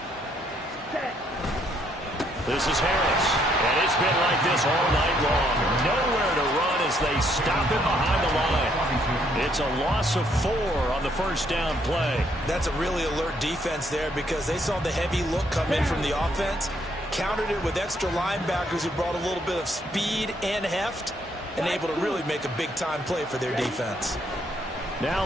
This is Harris, and it's been like this all night long. Nowhere to run as they stop him behind the line. It's a loss of 4 on the first down play. That's a really alert defense there because they saw the heavy look come in from the offense, countered it with extra linebackers who brought a little bit of speed and heft, and able to really make a big-time play for their defense. Now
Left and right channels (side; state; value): both; normal; correlation 0.70